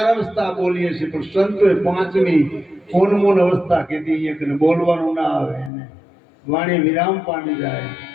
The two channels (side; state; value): right; drops out; at 5.7 s